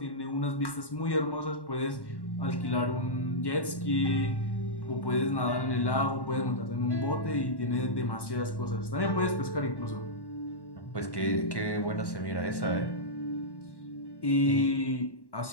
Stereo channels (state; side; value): late; right; 1.1 ms